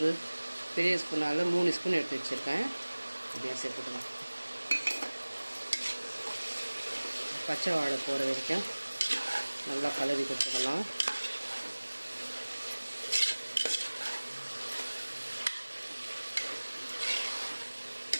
பெரிய ஸ்பூனால் 3 ஸ்பூன் எடுத்து வச்சுருக்கேன். அப்படியே சேர்த்துக்கலாம். பச்சை வாடை போகிற வரைக்கும் நல்லா கலரி கொடுத்துக்கலாம்.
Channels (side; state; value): both; inverted; correlation -1.00